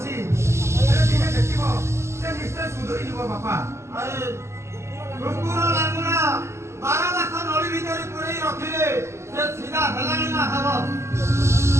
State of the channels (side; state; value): left; late; 0.13 ms